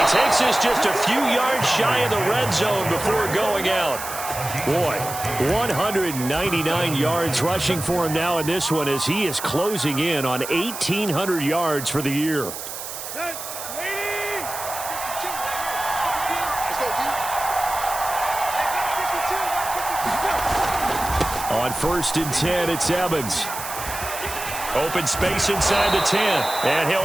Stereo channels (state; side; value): noise; right; hiss, 8 dB below the sound